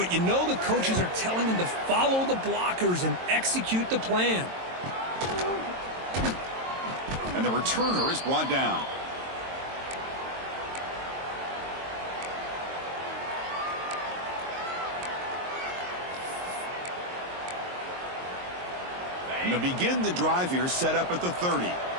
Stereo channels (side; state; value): left; late; 22 ms